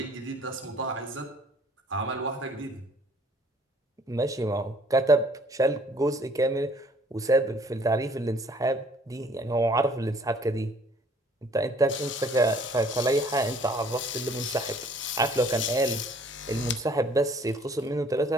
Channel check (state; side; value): normal; both; correlation 0.57